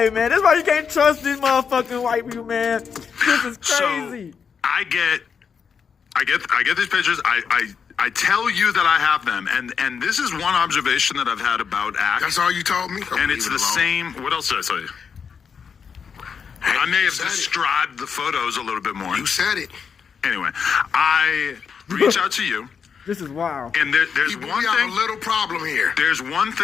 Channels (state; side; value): quieter; right; 6.5 dB